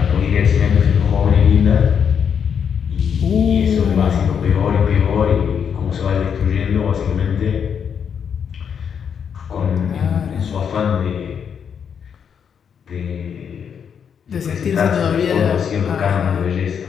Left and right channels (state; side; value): quieter; right; 7.4 dB